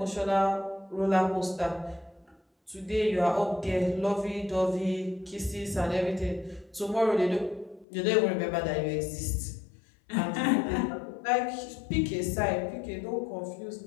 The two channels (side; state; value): right; drops out; at 7.9 s